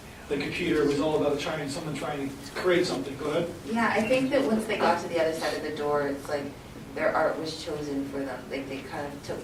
the computer was all about someone trying to create something. Go ahead. Yeah, I think that once they got to the other side of the door, it's like their art was chosen for them. Like they kind of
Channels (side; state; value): both; identical; correlation 1.00